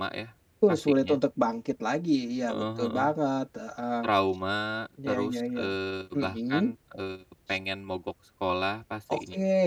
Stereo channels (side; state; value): both; identical; correlation 1.00